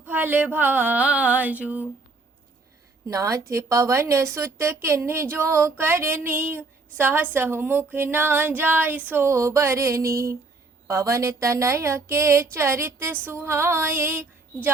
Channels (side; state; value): left; quieter; 3.6 dB